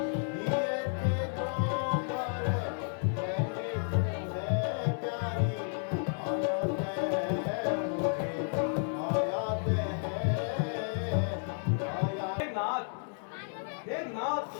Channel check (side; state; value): right; silent; 56 dB below the other